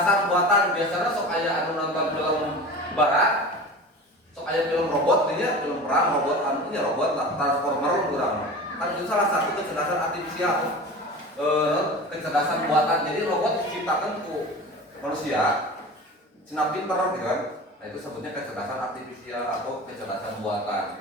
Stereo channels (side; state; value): both; normal; correlation 0.34